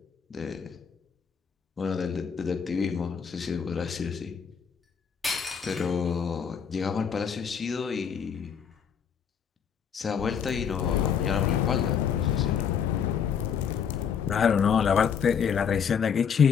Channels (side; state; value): right; quieter; 7.2 dB